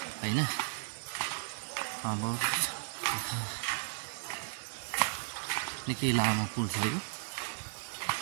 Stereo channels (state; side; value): silent; left; 54 dB below the other